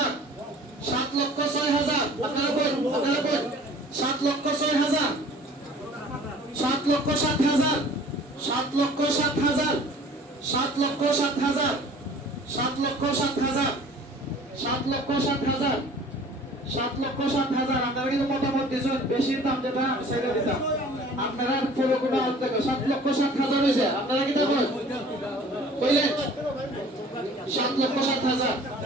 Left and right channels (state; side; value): normal; both; correlation 0.48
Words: 7,06,000 আপনারা বল, আপনারা বল। 7,06,000। 7,07,000। 7,07,000। 7,07,000। 7,07,000। 7,07,000। 7,07,000 আপনারা কিন্তু মতামত দিয়েছেন, বেশি দাম যেটা সেটা দিতাম। আপনারা পুরো কোটা অর্ধেক 7,07,000 হয়েছে। আপনারা কি দেখুন কইলেন 7,07,000।